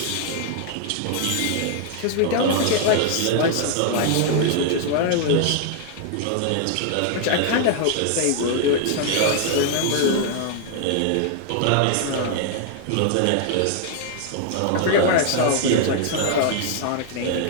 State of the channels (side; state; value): both; different; correlation 0.00